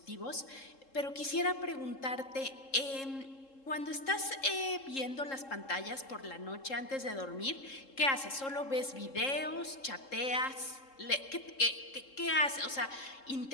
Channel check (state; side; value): late; right; 3.7 ms